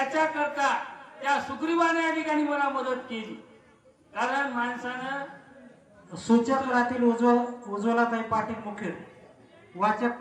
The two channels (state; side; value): identical; both; correlation 1.00